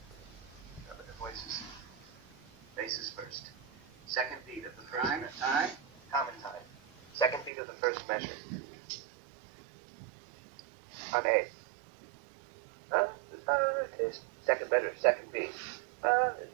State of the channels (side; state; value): left; drops out; at 7.5 s